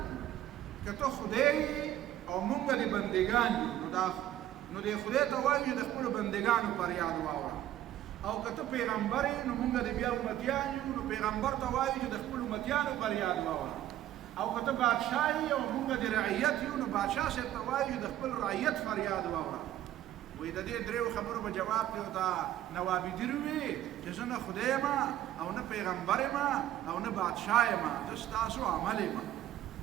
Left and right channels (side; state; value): left; quieter; 12.8 dB